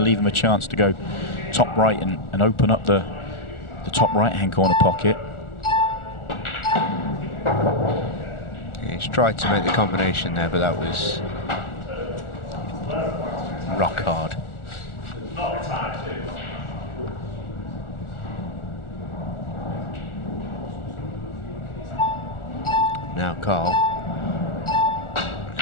leave him a chance to go top right and open up the top right-hand corner pocket. Yeah, he's tried to make the combination there, but that was rock hard. Now Karl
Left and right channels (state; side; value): late; right; 1.4 ms